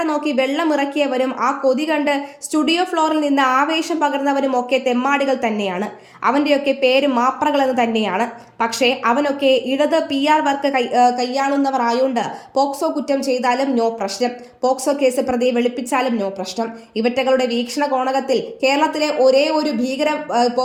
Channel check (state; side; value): identical; both; correlation 1.00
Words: നോക്കി വെള്ളം ഇറക്കിയവരും ആ കൊതി കണ്ട് സ്റ്റുഡിയോ ഫ്ലോറിൽ നിന്ന് ആവേശം പകർന്നവരും ഒക്കെ തെമ്മാടികൾ തന്നെയാണ്. അവൻ്റെയൊക്കെ പേര് മാപ്രകളെന്ന് തന്നെയാണ്. പക്ഷേ അവനൊക്കെ ഇടത് PR വർക്ക് കൈയാളുന്നവർ ആയോണ്ട് പോക്സോ കുറ്റം ചെയ്താലും നോ പ്രശ്നം, പോക്സോ കേസ് പ്രതിയെ വെളുപ്പിച്ചാലും നോ പ്രശ്നം. ഇവറ്റകളുടെ വീക്ഷണ കോണകത്തിൽ കേരളത്തിലെ ഒരേ ഒരു ഭീകര